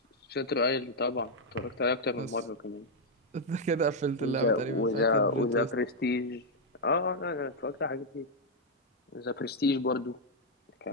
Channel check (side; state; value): both; normal; correlation -0.01